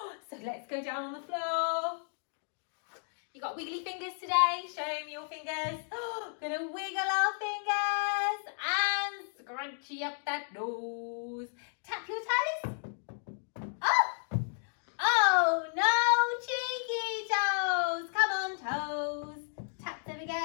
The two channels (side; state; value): right; silent; 56 dB below the other